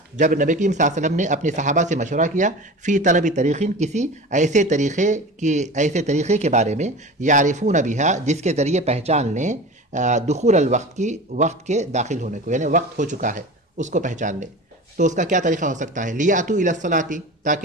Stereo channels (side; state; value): both; normal; correlation 0.33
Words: جب نبی کریم صلی اللہ علیہ وسلم نے اپنے صحابہ سے مشورہ کیا، فی طلب طریقین، کسی ایسے طریقے کے بارے میں، یعرفون بہا، جس کے ذریعے پہچان لیں دخول الوقت کی، وقت کے داخل ہونے کو، یعنی وقت ہو چکا ہے اس کو پہچان لیں. تو اس کا کیا طریقہ ہو سکتا ہے؟ لیاتوا الی الصلاۃ،